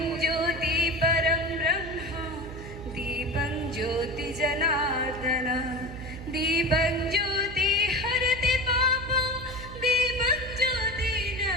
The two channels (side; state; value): right; noise; hum, 12 dB below the sound